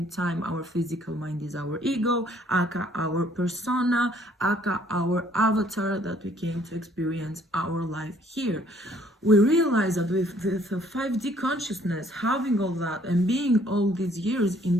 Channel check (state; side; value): normal; both; correlation 0.62